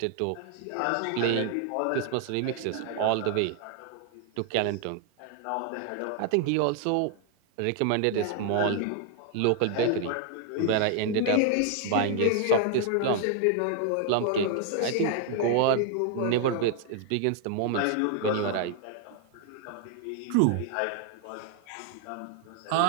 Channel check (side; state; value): both; different; correlation 0.00